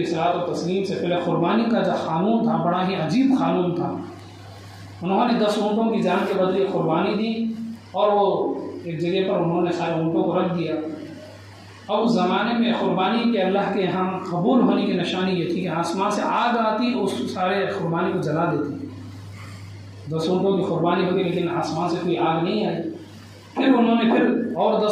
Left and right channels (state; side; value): identical; both; correlation 1.00